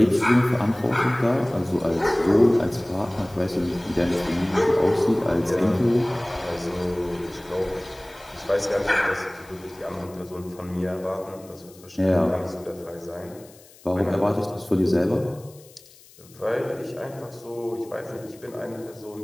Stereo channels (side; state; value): left; noise; hiss, 24 dB below the sound